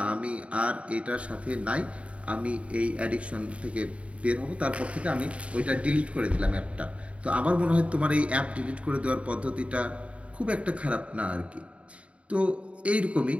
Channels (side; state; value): left; late; 0.063 ms